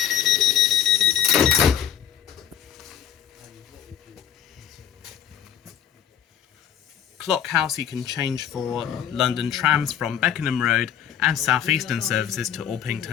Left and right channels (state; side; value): quieter; right; 9.4 dB